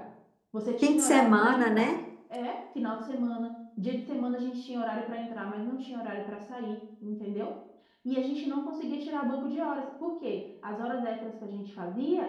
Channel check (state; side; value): identical; both; correlation 1.00